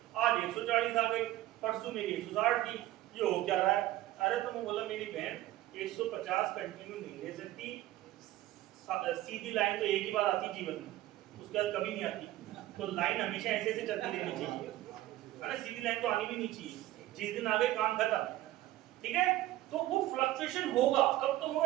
आज 140 आ गई, परसों मेरी 160 थी, ये हो क्या रहा है। अरे तो मैं बोला मेरी बहन 150 कंटिन्यू नहीं ले सकती, सीधी लाइन तो एक ही बार आती जीवन में, उसके बाद कभी नहीं आती। तो लाइन हमेशा ऐसे ऐसे चलती रहनी चाहिए, है ना, सीधी लाइन तो आनी भी नहीं चाहिए। जिस दिन आ गए काम खत्म, ठीक है। तो वो फ्लक्चुएशन होगा, कब तक होगा,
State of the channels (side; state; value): left; quieter; 15.4 dB